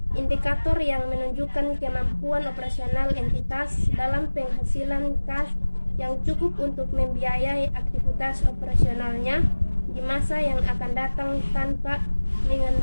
indikator yang menunjukkan kemampuan operasional entitas dalam penghasilan kas yang cukup untuk membiayai aktivitas operasionalnya di masa yang akan datang tanpa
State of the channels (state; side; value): inverted; both; correlation -1.00